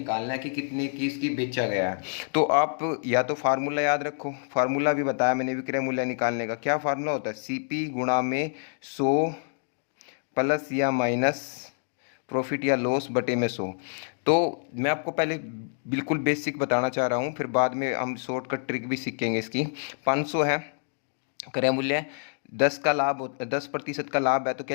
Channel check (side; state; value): right; silent; digital silence